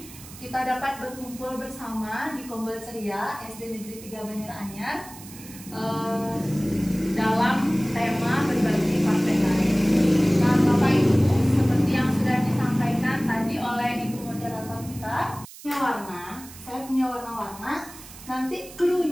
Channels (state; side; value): noise; right; hiss, 17 dB below the sound